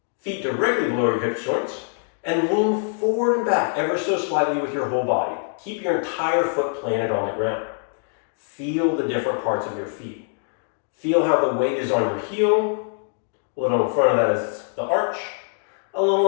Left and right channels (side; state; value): right; silent; 63 dB below the other